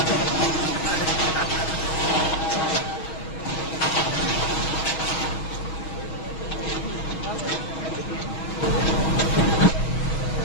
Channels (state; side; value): late; right; 6.3 ms